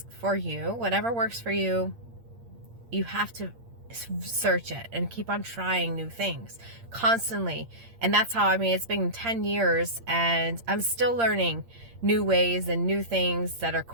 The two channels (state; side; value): late; left; 8.7 ms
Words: for you, whatever works for you. You have to search it and keep on trying new things constantly. And that's how, I mean, it's been 10 years and I'm still learning new ways and new things that are